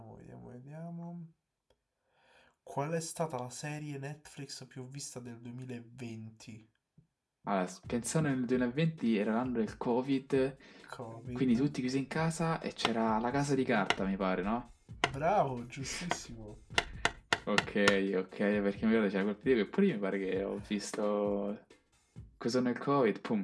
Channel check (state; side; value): identical; both; correlation 1.00